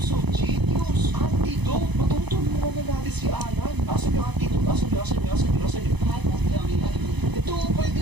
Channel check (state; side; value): late; left; 0.99 ms